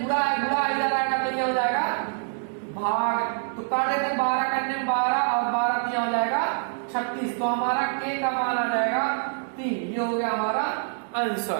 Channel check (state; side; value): silent; left; digital silence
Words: गुणा है, गुणा इधर आएगा तो ये हो जाएगा भाग, तो काट देते हैं 12 करने 12, और 12 3 हो जाएगा 36, तो हमारा k का मान आ जाएगा 3, ये हो गया हमारा